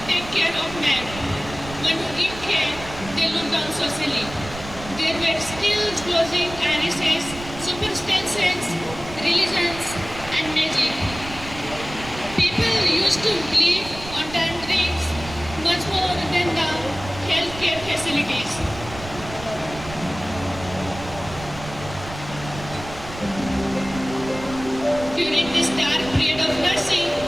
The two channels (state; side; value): noise; right; rumble, 13 dB below the sound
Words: take care of men. When who give care, they looked down socially. There were still clothing, irises, superstitions, religions, and magic. People used to live on drinks much more than the healthcare facilities. During this dark period of nursing,